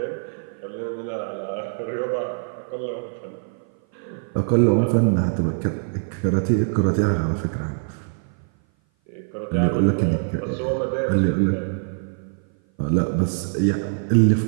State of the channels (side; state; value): left; silent; 57 dB below the other